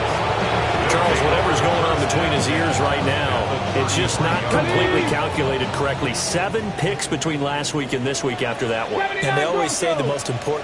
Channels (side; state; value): both; identical; correlation 1.00